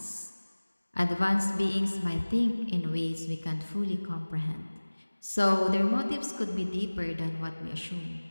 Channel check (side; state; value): both; inverted; correlation -1.00